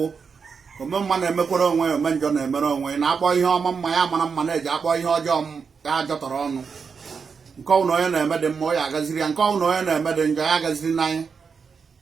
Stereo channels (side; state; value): left; quieter; 5.7 dB